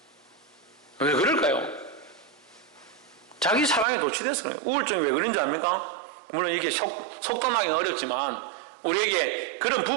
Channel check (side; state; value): left; drops out; at 3.9 s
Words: 왜 그럴까요? 자기 사랑에 도취돼서 그래요. 우울증이 왜 그런지 압니까? 물론 이렇게 속단하기는 어렵지만 우리에게 그런